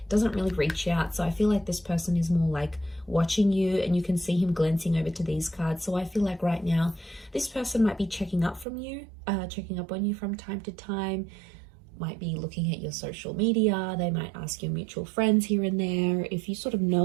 It doesn't really reach out, so I feel like this person is more like watching you, and you can see him glancing over to these cards. So I feel like right now this person might be checking up on you from time to time, might be looking at your social media. They might ask your mutual friends here and there. If you sort of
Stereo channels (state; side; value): drops out; left; at 8.7 s